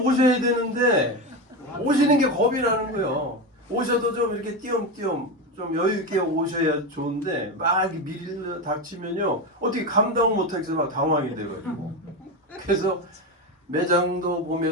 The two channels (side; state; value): both; normal; correlation 0.17